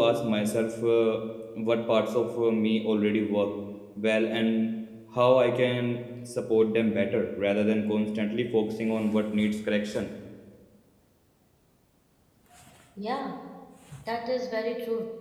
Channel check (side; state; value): both; identical; correlation 1.00